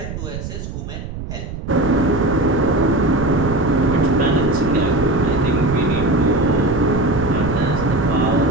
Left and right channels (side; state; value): right; noise; rumble, 8 dB below the sound